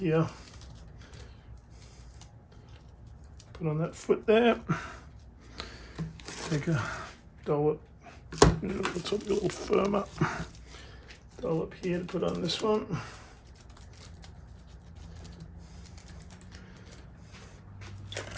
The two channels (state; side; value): identical; both; correlation 1.00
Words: put on that foot there, take a dollop, let's hope a little firmer, dollop here to put on this one.